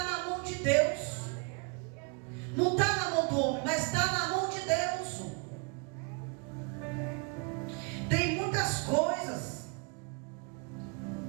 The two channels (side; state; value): left; quieter; 34.8 dB